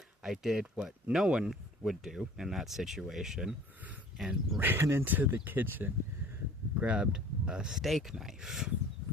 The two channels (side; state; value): both; normal; correlation 0.48